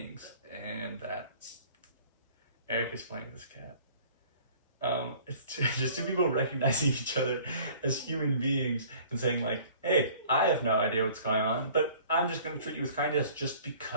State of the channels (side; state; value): both; inverted; correlation -0.50